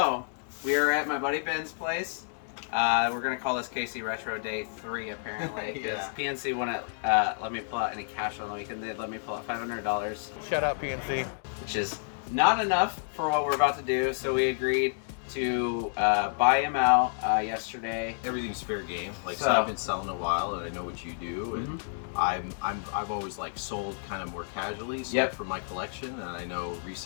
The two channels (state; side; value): silent; right; digital silence